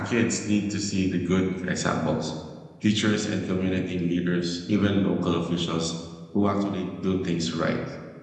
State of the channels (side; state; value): both; identical; correlation 1.00